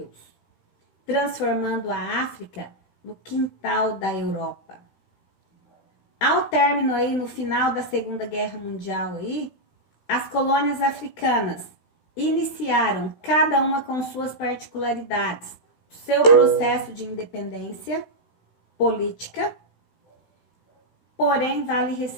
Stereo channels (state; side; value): late; right; 15 ms